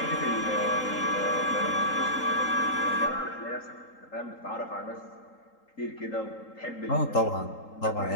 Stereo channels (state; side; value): late; right; 3.8 ms